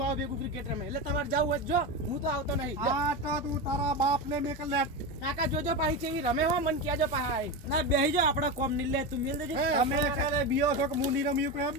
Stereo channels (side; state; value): both; normal; correlation 0.19